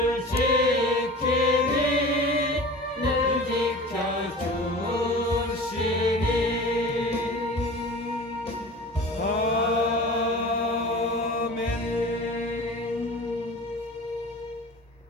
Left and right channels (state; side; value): normal; both; correlation 0.37